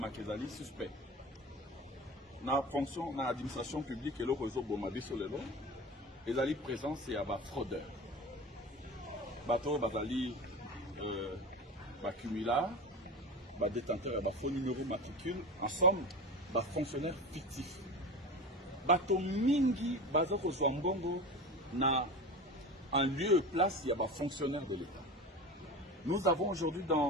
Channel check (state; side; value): normal; both; correlation 0.30